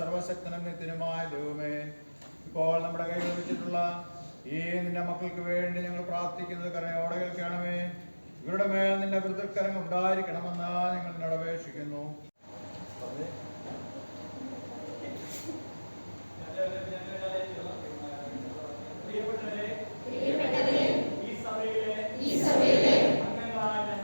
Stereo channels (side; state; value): both; inverted; correlation -1.00